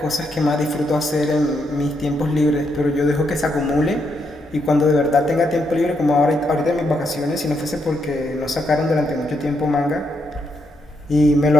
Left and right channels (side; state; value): both; normal; correlation 0.79